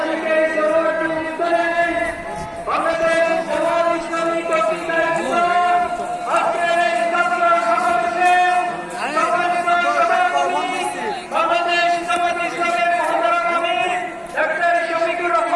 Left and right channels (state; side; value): identical; both; correlation 1.00